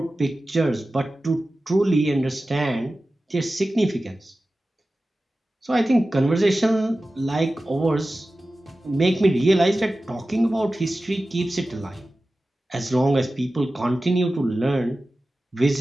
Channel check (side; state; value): both; normal; correlation 0.95